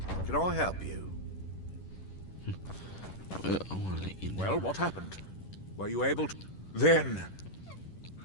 Can I help you? I want to let you know. Well, what happened? Were you able to... Then...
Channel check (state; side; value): late; right; 11 ms